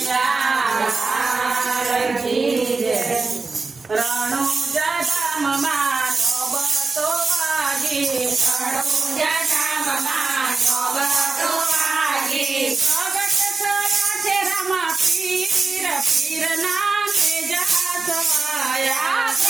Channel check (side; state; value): left; quieter; 4.0 dB